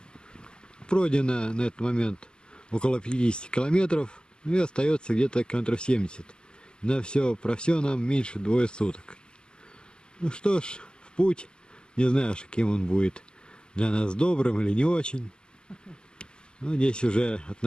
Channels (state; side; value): late; right; 0.047 ms